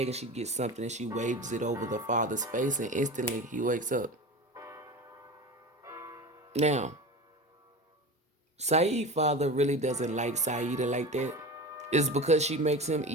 and she gets something and she waves it over the father's face, and instantly he wakes up. Now, Saeed's father really doesn't like Saida like that. It's because she makes him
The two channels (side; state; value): both; normal; correlation 0.30